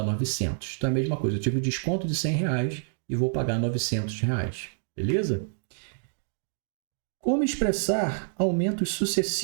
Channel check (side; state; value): left; silent; digital silence